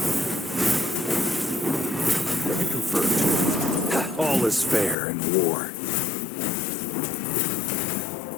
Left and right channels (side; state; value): right; drops out; at 5.0 s